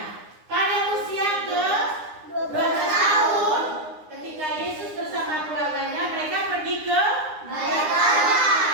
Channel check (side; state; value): left; late; 9.7 ms